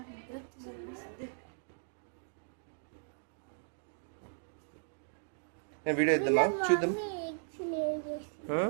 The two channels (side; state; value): left; silent; digital silence